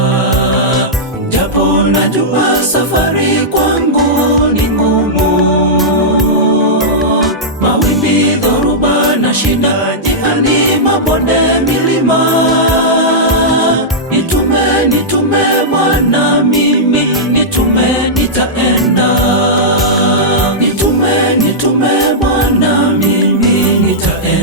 japo najua safari kwangu ni ngumu. Mawimbi, dhoruba na shida njiani, mabonde, milima. Nitume Bwana, mimi nitume, nitaenda. Nitume Bwana, mimi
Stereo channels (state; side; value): normal; both; correlation -0.11